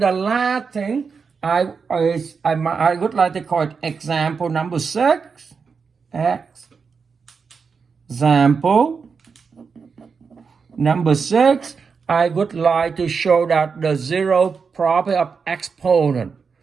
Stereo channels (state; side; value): quieter; left; 5.5 dB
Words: last thing I would like to call it example number 6. Example number 6. I would like to show that the zero property of exponent.